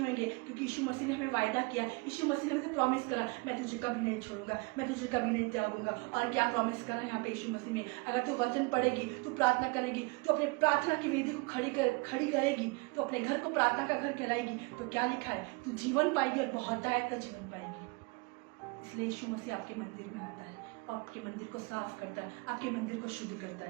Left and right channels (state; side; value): quieter; left; 28.5 dB